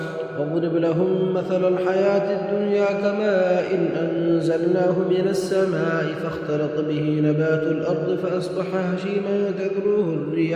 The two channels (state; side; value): identical; both; correlation 1.00